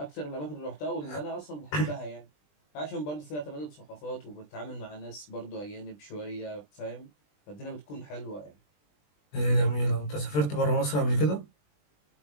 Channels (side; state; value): right; late; 20 ms